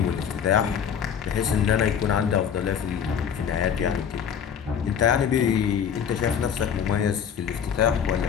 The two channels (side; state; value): right; quieter; 7.8 dB